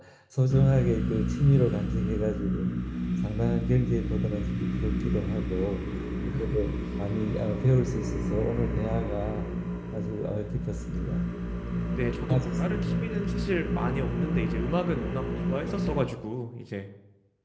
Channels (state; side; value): identical; both; correlation 1.00